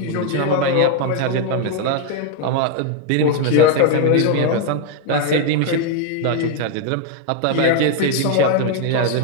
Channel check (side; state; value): both; different; correlation 0.01